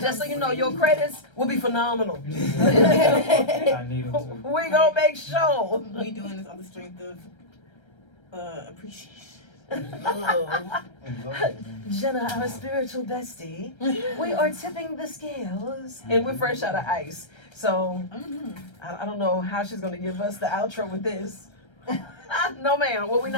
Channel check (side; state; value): right; late; 1.3 ms